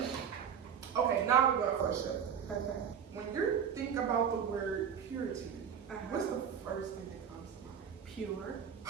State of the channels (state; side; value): quieter; left; 7.8 dB